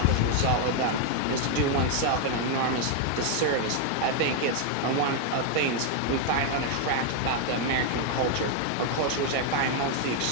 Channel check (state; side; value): different; both; correlation 0.00